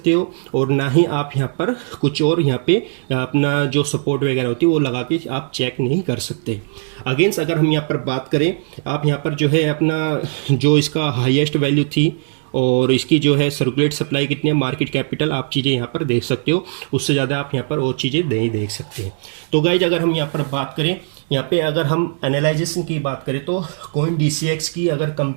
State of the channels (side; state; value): left; silent; 67 dB below the other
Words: हो और ना ही आप यहाँ पर कुछ और यहाँ पे अपना जो सपोर्ट वगैरह होती है वो लगा के आप चेक नहीं कर सकते। अगेंस्ट अगर हम यहाँ पर बात करें, आप यहाँ पर जो है अपना जो इसका हाईएस्ट वैल्यू थी और इसकी जो है सर्कुलेट सप्लाई कितनी है, मार्केट कैपिटल, आप चीज़ें यहाँ पर देख सकते हो। उससे ज़्यादा आप यहाँ पर और चीज़ें नहीं देख सकते। तो गाइज अगर हम यहाँ पर बात करें, यहाँ पे अगर हम एनालाइजेशन की बात करें तो कोइन DCX की अगर